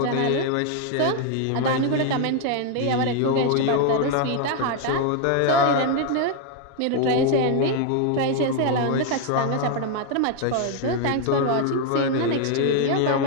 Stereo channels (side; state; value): both; different; correlation 0.00